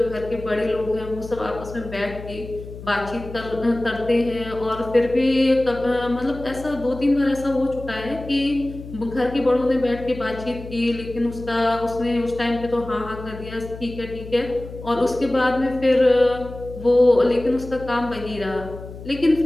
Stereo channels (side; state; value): left; noise; hum, 13 dB below the sound